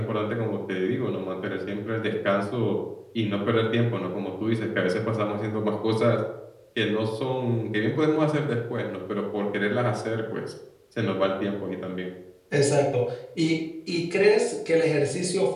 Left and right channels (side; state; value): both; identical; correlation 1.00